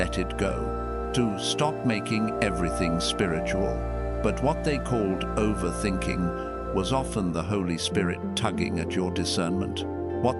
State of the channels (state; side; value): identical; both; correlation 1.00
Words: it go, to stop making everything spiritual. But what they called overthinking was often the Holy Spirit tugging at your discernment.